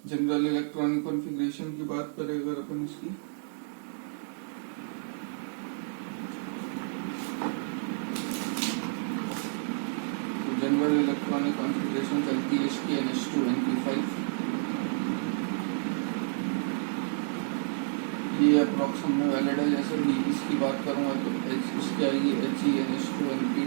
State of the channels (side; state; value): left; silent; 58 dB below the other